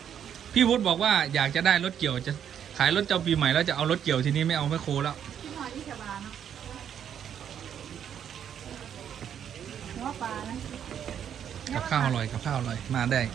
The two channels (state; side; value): quieter; left; 9.0 dB